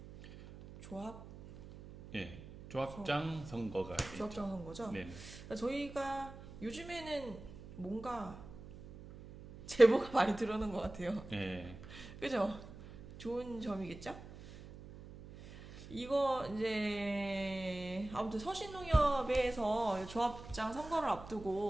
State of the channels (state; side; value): noise; right; hum, 15 dB below the sound